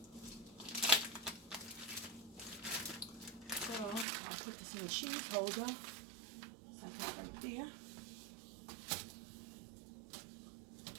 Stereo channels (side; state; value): left; drops out; at 4.0 s